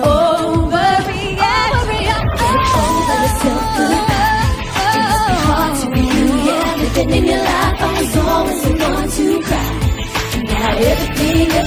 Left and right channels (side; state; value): both; identical; correlation 1.00